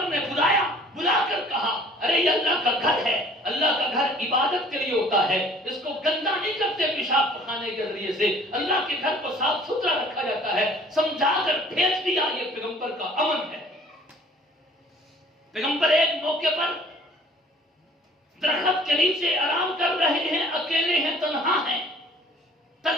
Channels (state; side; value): normal; both; correlation 0.52